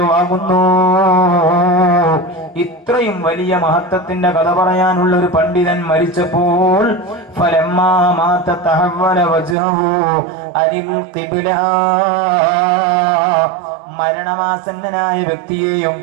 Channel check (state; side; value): drops out; left; at 9.6 s